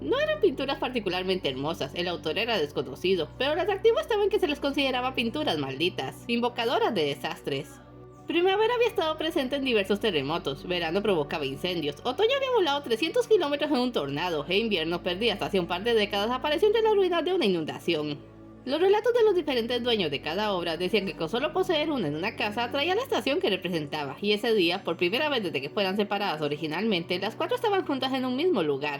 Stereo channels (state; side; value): identical; both; correlation 1.00